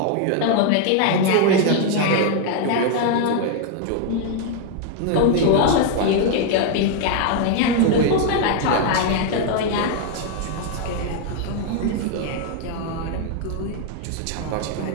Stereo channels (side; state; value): both; different; correlation 0.00